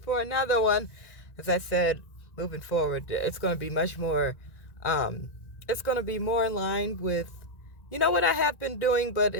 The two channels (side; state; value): right; late; 1.9 ms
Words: another one. As I said, moving forward, it's going to be much more, um, it's going to be more in line with, what I have been doing,